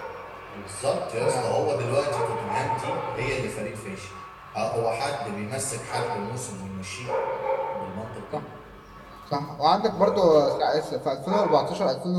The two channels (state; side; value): identical; both; correlation 1.00